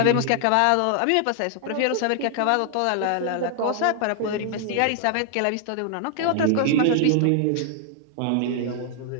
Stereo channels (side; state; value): both; different; correlation 0.00